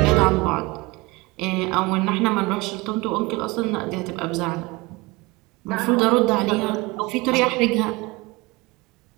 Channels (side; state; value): left; quieter; 23.0 dB